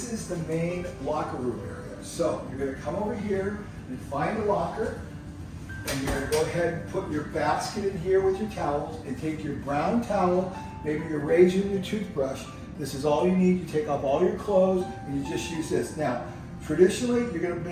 is the main locker room area. So you're going to come over here and find a locker, and you're going to go ahead and put your basket in here with your towels, and take your brown towel, maybe your razor and your toothbrush. This is all you need. You take off all your clothes and you just use this. Now, traditionally, you're going to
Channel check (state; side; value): identical; both; correlation 1.00